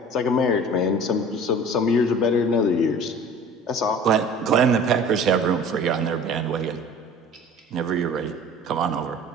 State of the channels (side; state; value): both; normal; correlation 0.44